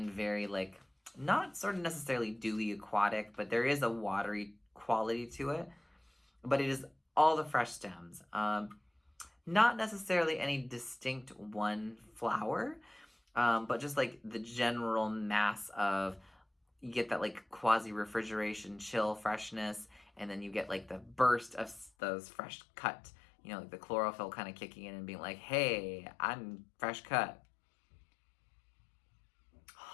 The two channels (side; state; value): right; drops out; at 21.9 s